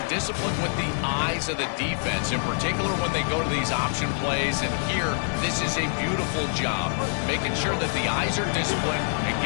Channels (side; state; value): right; silent; 61 dB below the other